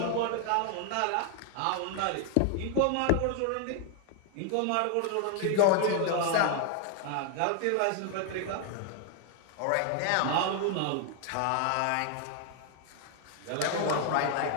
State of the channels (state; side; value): different; both; correlation 0.00